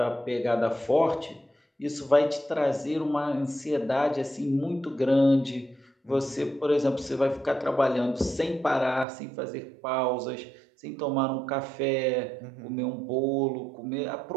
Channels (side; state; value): left; drops out; at 9.1 s